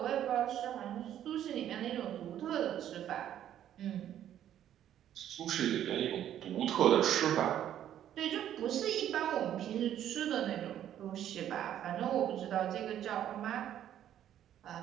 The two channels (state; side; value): quieter; left; 10.9 dB